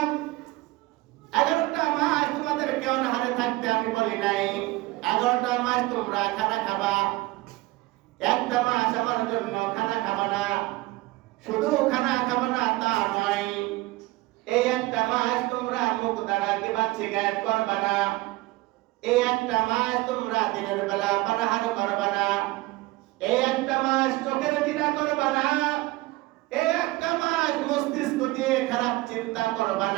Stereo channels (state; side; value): quieter; left; 19.9 dB